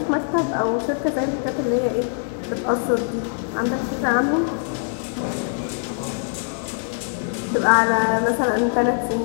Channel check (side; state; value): right; silent; 64 dB below the other